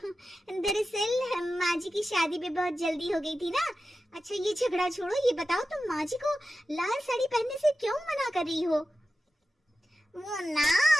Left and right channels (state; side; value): normal; both; correlation 0.93